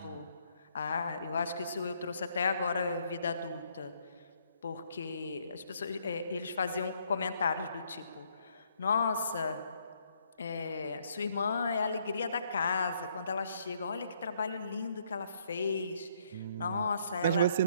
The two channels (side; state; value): both; inverted; correlation -0.69